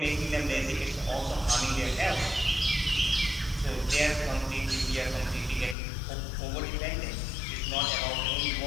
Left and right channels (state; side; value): drops out; right; at 5.8 s